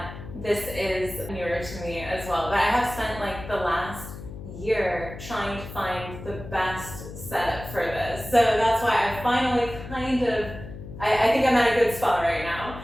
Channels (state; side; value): noise; left; hum, 12 dB below the sound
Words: This is newer to me as well. But I have spent like the last year trying to find the best setup for this. So that's why I finally I think I'm at a good spot right now.